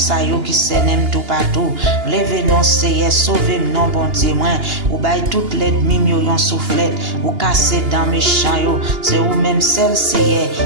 yo qui s'aime tout partout. Levez non Seigneur, sauvez non bon Dieu moi. Ou bay toute l'ennemi yo yon soufflette. Ou casser dans mes champs yo. C'est ou même celle Seigneur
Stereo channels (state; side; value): late; left; 2.8 ms